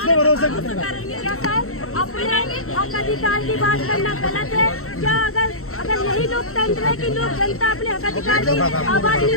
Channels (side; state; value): right; late; 0.63 ms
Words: पर भरोसा करेगा? अपने हक अधिकार की बात करना गलत है क्या? अगर यही लोकतंत्र है कि लोग जनता अपने हक अधिकार की आवाज नहीं